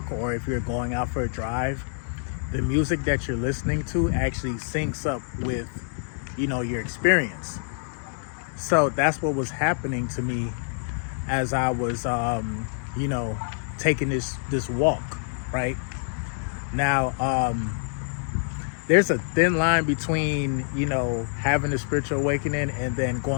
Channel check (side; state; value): right; silent; 61 dB below the other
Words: or if you're going out for a drive, the music that you're listening to actually syncs up with, your experience. So that's what was happening to me as I was, taking this walk, right? Now, there's a thin line between, having a spiritual awakening and then